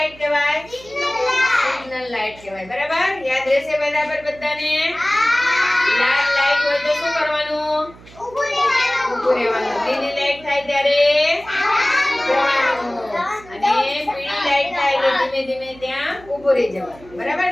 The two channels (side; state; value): right; noise; hum, 22 dB below the sound